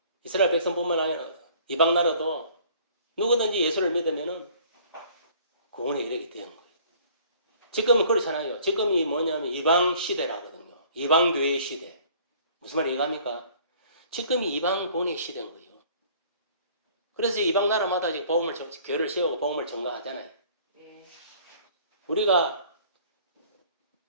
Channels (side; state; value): both; inverted; correlation -0.54